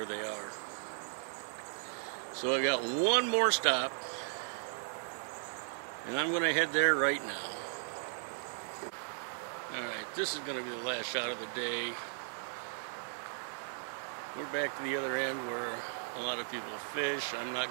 they are. So I got one more stop, and I'm going to head there right now. Alright, this is going to be the last shot of the day. We're back to the other end where a lot of people fish. I'm not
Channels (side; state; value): left; silent; digital silence